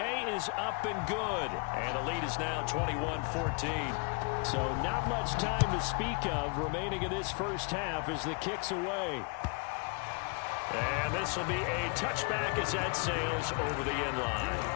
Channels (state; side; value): quieter; right; 33.4 dB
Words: is up and good. And the lead is now 21-14. So not much time to speak of remaining in this first half as the kick's away. And this will be a touchback as that sails over the end line.